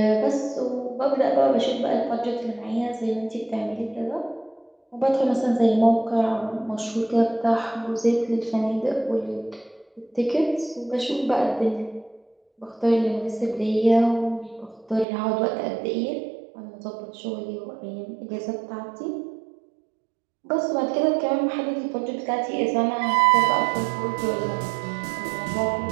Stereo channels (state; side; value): drops out; left; at 15.1 s